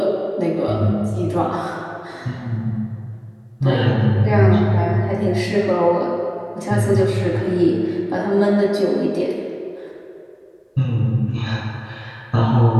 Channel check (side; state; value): both; identical; correlation 1.00